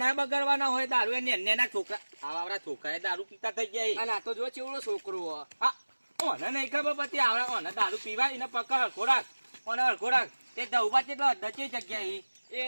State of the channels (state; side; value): inverted; both; correlation -1.00